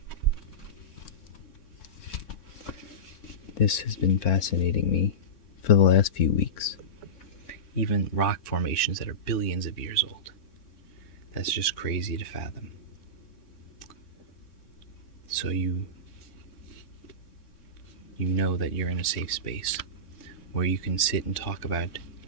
This has been fascinating me for the last few weeks. Even rock formations that are billions of years old. That's just crazy to fathom. So you know that you're in a safe space where you can sit and talk about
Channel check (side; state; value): right; late; 3.6 ms